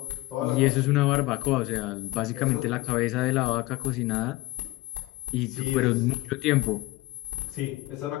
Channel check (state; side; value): quieter; right; 18.2 dB